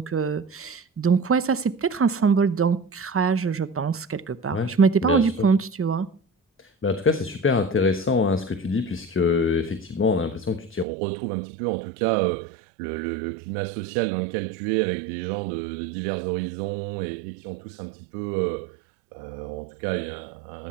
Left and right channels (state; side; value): drops out; left; at 10.9 s